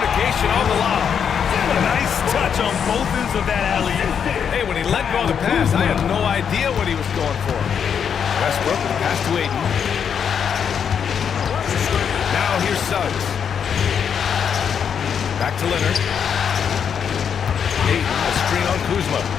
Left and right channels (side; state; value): right; quieter; 7.5 dB